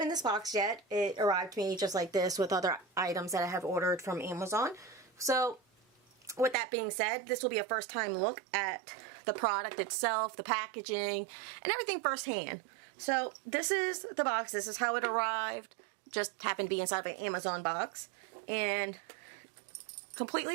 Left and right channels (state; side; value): drops out; left; at 6.6 s